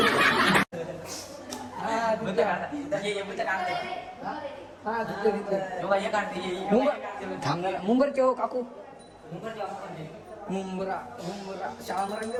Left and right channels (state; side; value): identical; both; correlation 1.00